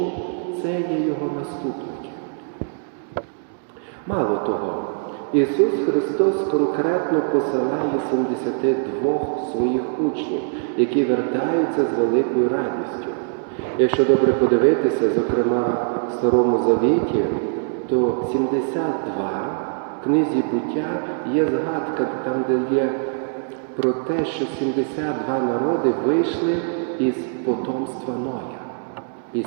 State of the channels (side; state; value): left; silent; digital silence